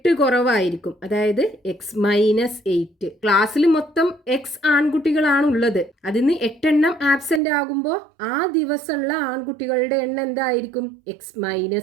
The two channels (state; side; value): drops out; left; at 7.4 s